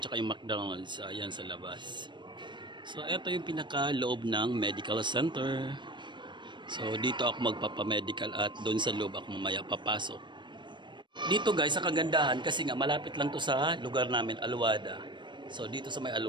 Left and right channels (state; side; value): late; left; 0.22 ms